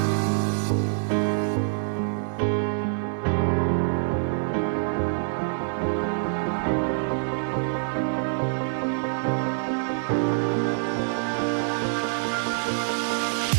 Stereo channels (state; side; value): silent; left; 58 dB below the other